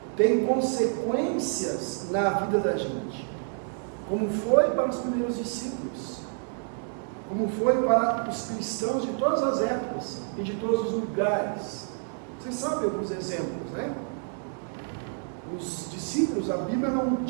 tem consequências na vida da gente, como foi para os primeiros discípulos, como foi para os cristãos de todas as épocas e de todos os lugares. Vocês sabem alguns exemplos, né? Os discípulos, a Bíblia não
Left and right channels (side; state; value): left; silent; 59 dB below the other